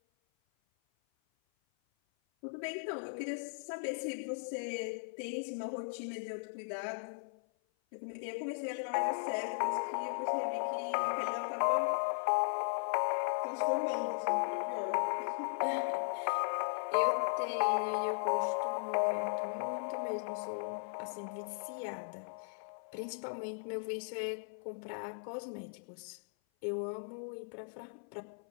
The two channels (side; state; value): right; silent; 53 dB below the other